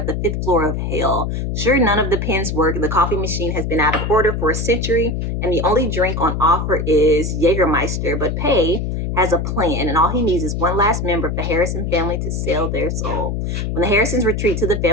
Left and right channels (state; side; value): noise; left; hum, 2 dB below the sound